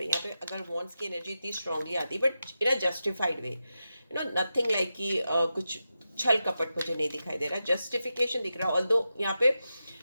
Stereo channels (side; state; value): both; inverted; correlation -0.90